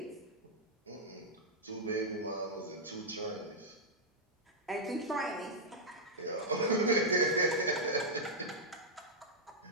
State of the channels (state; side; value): normal; both; correlation -0.07